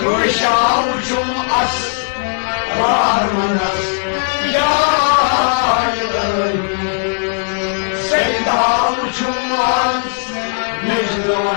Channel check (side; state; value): right; silent; digital silence